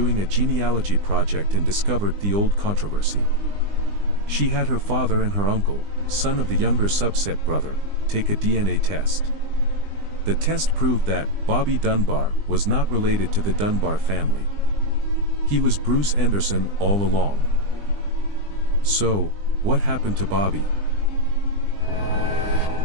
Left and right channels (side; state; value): left; late; 20 ms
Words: a genealogy project and discovered the old controversy. She had her father and her uncle, son of the younger subset brother, take a DNA test. The test proved that Bobby Dunbar was not related to the Dunbar family. He was Bruce Anderson all along. So, what happened to Bobby?